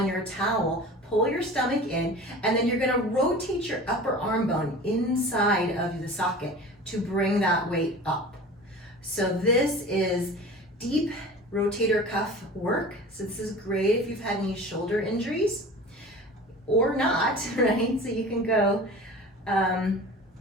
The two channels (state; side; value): normal; both; correlation 0.38